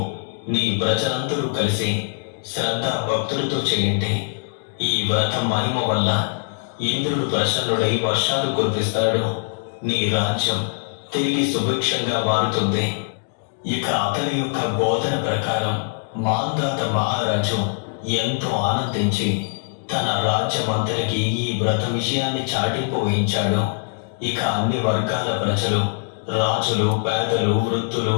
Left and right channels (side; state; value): right; silent; digital silence